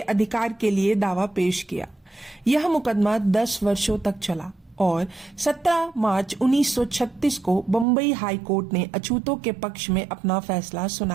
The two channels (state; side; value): drops out; left; at 7.9 s